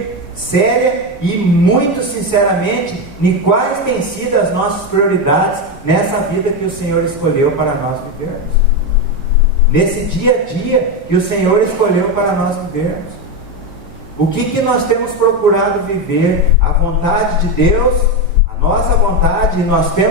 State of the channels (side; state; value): both; normal; correlation 0.12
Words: séria e muito sinceramente em quais têm sido as nossas prioridades nessa vida que o Senhor escolheu para nós vivermos, nesse dia a dia que o Senhor escolheu para nós vivermos. O que nós temos procurado viver? A vontade de Deus, a nossa vontade, e nós